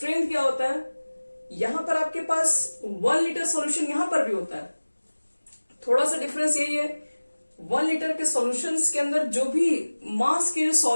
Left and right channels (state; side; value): inverted; both; correlation -1.00